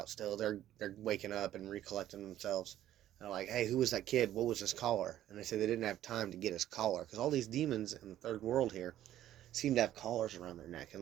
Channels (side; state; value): left; quieter; 12.6 dB